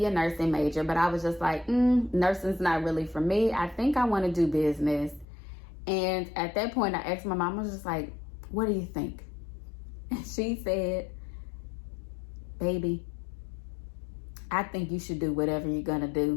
a nursing major, but I was just like, nursing's not really for me. I think I want to do business. And at that point, I asked my mom, I was just like, what do you think? And she said, baby, I think you should do whatever you're going to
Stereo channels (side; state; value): right; drops out; at 5.2 s